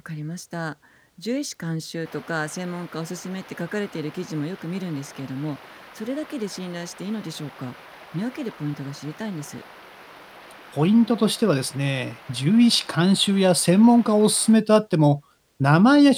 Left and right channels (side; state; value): both; identical; correlation 1.00